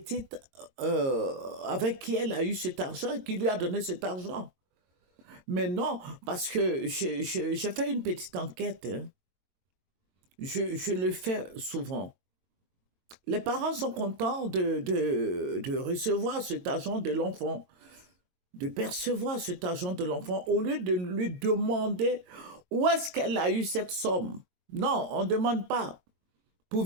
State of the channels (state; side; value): late; left; 22 ms